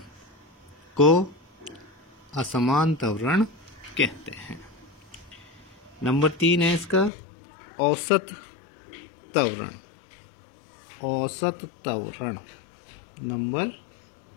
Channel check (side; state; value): right; drops out; at 7.1 s